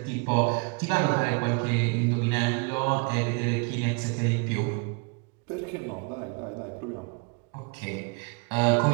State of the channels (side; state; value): left; quieter; 32.6 dB